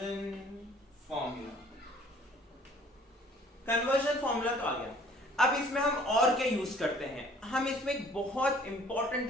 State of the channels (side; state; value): both; normal; correlation 0.55